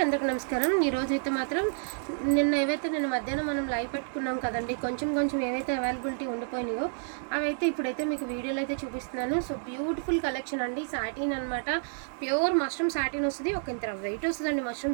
అందరికి నమస్కారం. ఈరోజు అయితే మాత్రం నిన్న మధ్యాహ్నం మనం లైవ్ పెట్టుకున్నాం కదండి, కొంచెం ఏవైతే అవైలబిలిటీ ఉండిపోయినాయో అవైతే ఇప్పుడైతే మీకు వీడియోలో అయితే చూపిస్తున్నాను. సో బ్యూటిఫుల్ కలెక్షన్ అండి, సాటిన్ అనమాట. ప్యూర్ మష్రూమ్ సాటిన్ వస్తుంది. ఒక ఇంత వెయిట్ వస్తుందండి.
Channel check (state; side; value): silent; left; digital silence